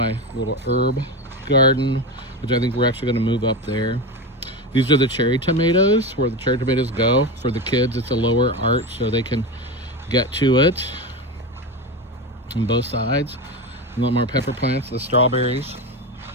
little herb garden, which I think we're actually going to move up there. These are the cherry tomatoes, where the cherry tomatoes go. For the kids, it's a lower arch so they can get to it on both sides. A lot more pepper plants. The strawberries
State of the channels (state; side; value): normal; both; correlation 0.19